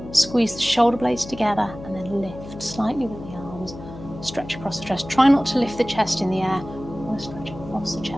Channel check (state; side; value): noise; left; hum, 14 dB below the sound